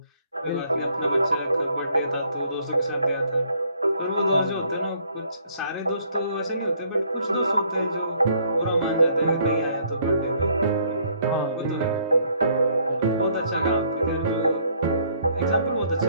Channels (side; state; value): both; inverted; correlation -0.64